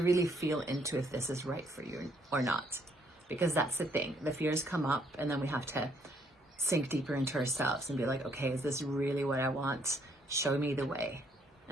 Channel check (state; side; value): normal; both; correlation 0.68